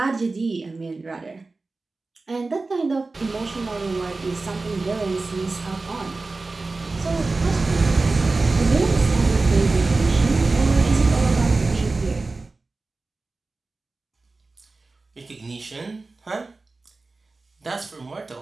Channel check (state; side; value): quieter; left; 3.6 dB